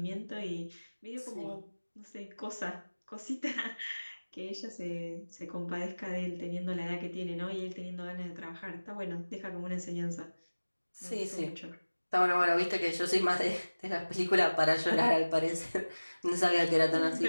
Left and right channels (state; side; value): inverted; both; correlation -1.00